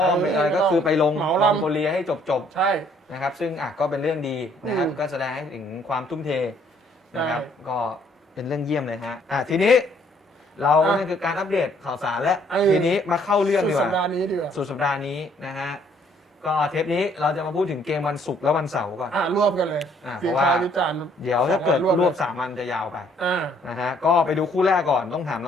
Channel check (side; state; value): both; normal; correlation 0.64